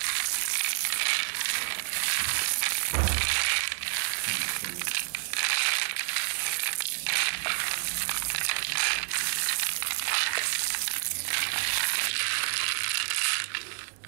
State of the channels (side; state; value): left; silent; digital silence